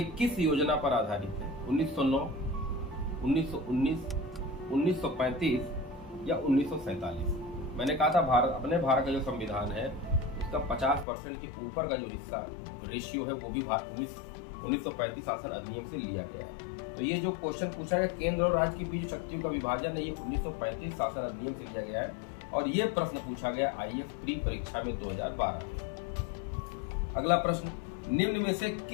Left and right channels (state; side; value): drops out; right; at 11.1 s